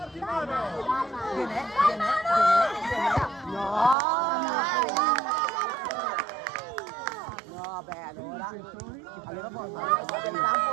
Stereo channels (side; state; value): left; drops out; at 4.0 s